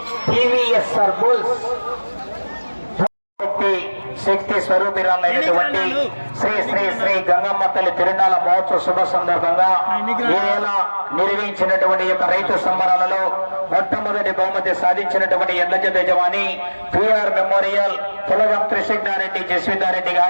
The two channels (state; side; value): inverted; both; correlation -1.00